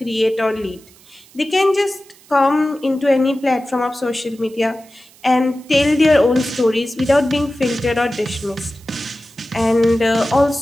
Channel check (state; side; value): noise; right; hiss, 26 dB below the sound